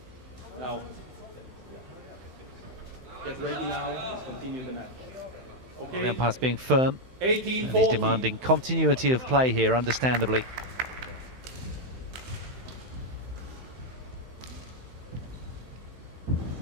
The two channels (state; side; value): late; left; 16 ms